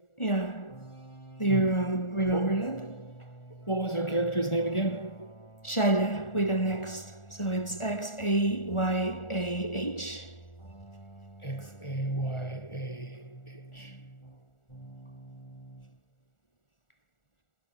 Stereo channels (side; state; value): right; late; 1.4 ms